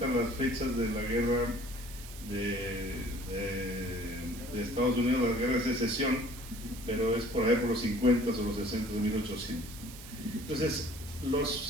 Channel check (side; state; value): right; noise; hiss, 15 dB below the sound